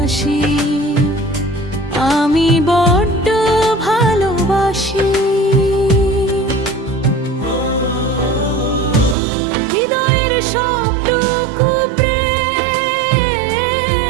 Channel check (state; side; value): drops out; left; at 9.2 s